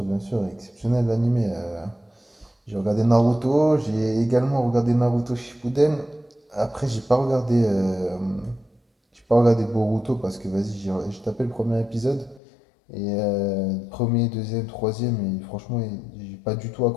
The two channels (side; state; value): right; drops out; at 12.4 s